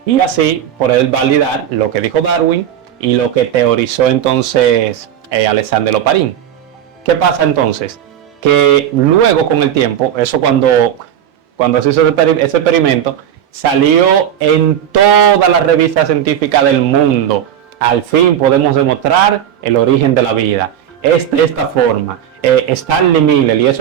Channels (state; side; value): quieter; left; 10.0 dB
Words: Y así poder validar lo que dijo Darwin y lo que teorizó entonces Alexander Oparin. ¿Qué pasa entonces? Que luego con el tiempo, eso cuando se hizo ese experimento, salió en todas las revistas científicas del mundo. Al fin podemos demostrar el origen de la vida. Es de esta forma. Stanley Miller, y